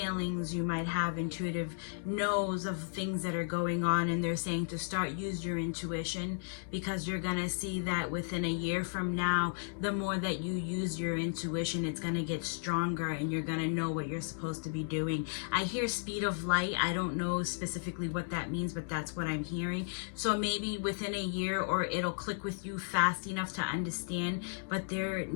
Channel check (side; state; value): right; silent; digital silence